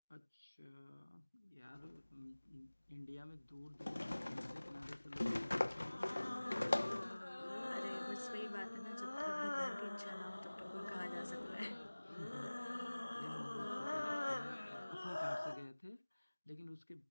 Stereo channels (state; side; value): inverted; both; correlation -1.00